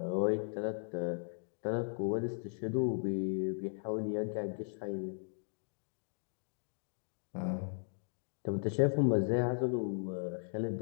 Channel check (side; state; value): right; silent; digital silence